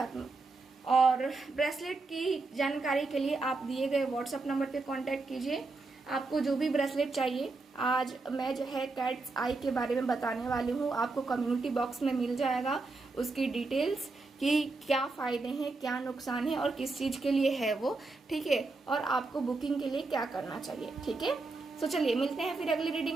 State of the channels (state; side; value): quieter; left; 3.6 dB